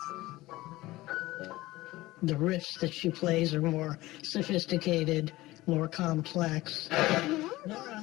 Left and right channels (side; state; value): right; quieter; 18.3 dB